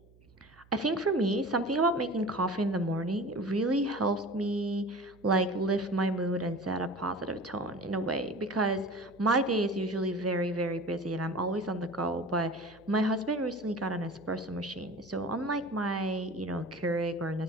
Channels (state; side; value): noise; right; hum, 27 dB below the sound